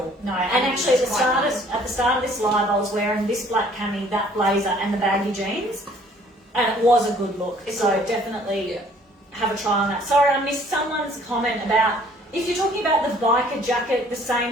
No, and actually at the start of this live, I was wearing this black cami, that blazer, and the baggy jeans, and it was a good look. So definitely have a try on that. Sorry, I missed someone's comment about if you're talking about the biker jacket, the same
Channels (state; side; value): normal; both; correlation 0.57